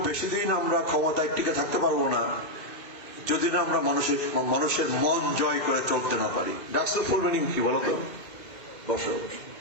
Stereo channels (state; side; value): late; right; 2.8 ms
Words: বেশি দিন আমরা ক্ষমতায় টিকে থাকতে পারবো না যদি না আমরা মানুষের মন জয় করে চলতে না পারি। ডাকসুর ফুল মিনিং কি বলতো? বসো।